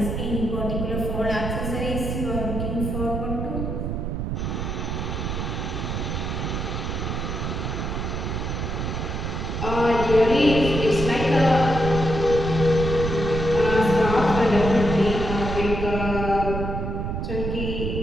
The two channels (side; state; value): right; noise; rumble, 3 dB below the sound